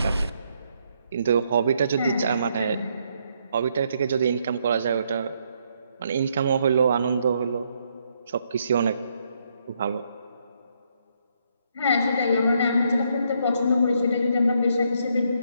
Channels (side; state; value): both; inverted; correlation -0.74